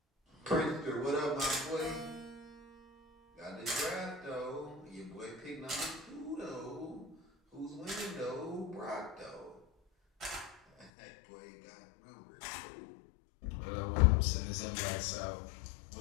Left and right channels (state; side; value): drops out; right; at 10.9 s